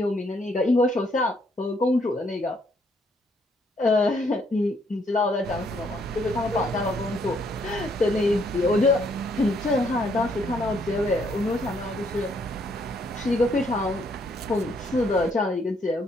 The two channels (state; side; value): normal; both; correlation 0.70